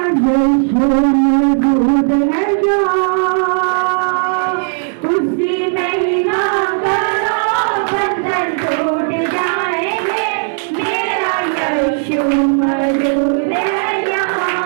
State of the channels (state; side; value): silent; left; digital silence